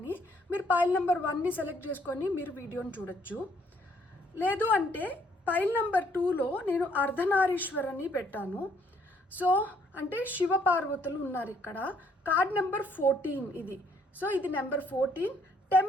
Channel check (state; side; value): normal; both; correlation 0.67